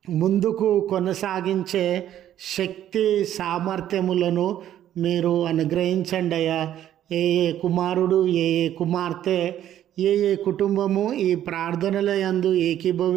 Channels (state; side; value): quieter; left; 11.5 dB